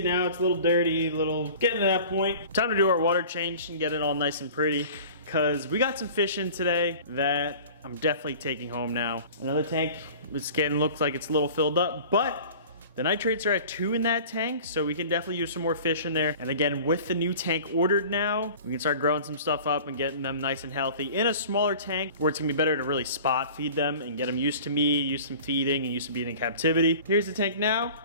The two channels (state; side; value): inverted; both; correlation -0.42